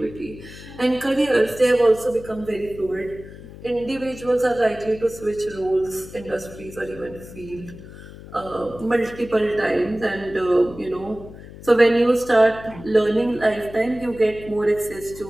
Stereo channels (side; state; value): left; noise; hum, 16 dB below the sound